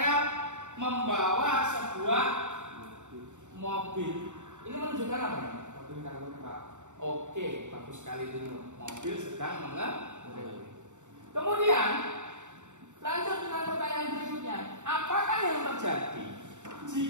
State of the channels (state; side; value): late; left; 0.85 ms